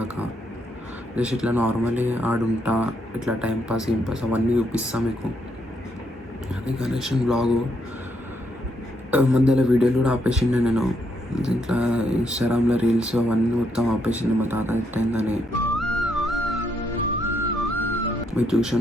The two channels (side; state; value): both; normal; correlation 0.76